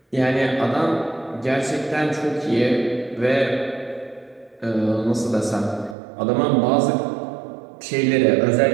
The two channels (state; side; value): drops out; left; at 6.0 s